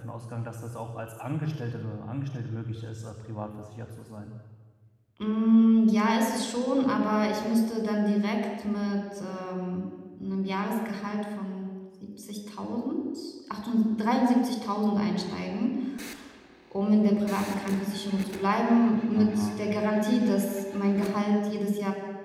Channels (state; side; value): identical; both; correlation 1.00